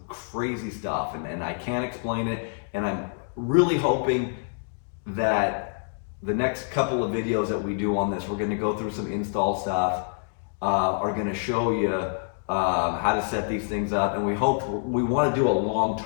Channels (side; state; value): right; silent; digital silence